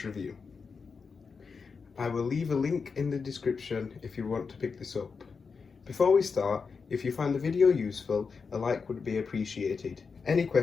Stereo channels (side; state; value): right; quieter; 5.2 dB